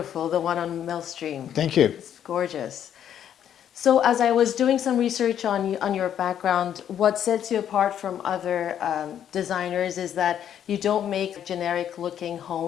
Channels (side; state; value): right; quieter; 9.7 dB